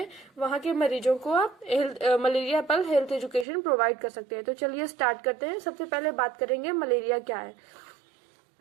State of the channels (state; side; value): drops out; left; at 3.5 s